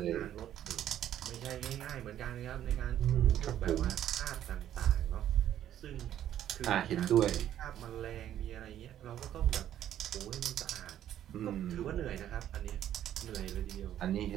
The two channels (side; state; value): left; quieter; 11.3 dB